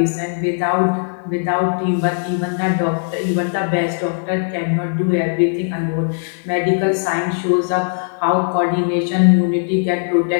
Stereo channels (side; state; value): right; silent; digital silence